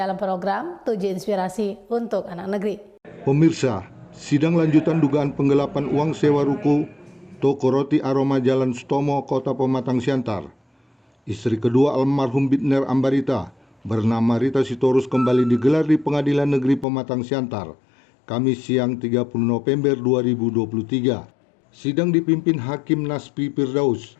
program 7 Inspirasi untuk Anak Negeri. Pemirsa, sidang lanjutan dugaan penggelapan uang sewa ruko toko roti Aroma Jalan Sutomo, Kota Pematang Siantar. Istri kedua almarhum Bitner Ambarita bernama Rita Sitorus kembali digelar di Pengadilan Negeri Pematang Siantar, Kamis siang 30 November 2023. Sidang dipimpin Hakim Naspi Firdaus,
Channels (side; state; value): right; drops out; at 16.9 s